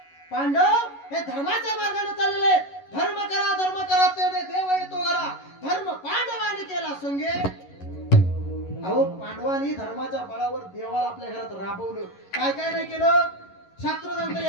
पांडव हे धर्माच्या मार्गाने चाललेले, धर्म करा त्याने देव येतो करा. धर्म पांडवांनी केला संगे. अहो पांडवांनी धर्माच्या बळावर देवाला आपल्या घरात राबवलं. काय काय नाही केलं? शास्त्र सांगतं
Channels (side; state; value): right; late; 11 ms